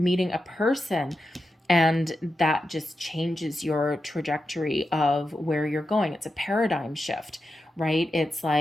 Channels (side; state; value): both; normal; correlation 0.89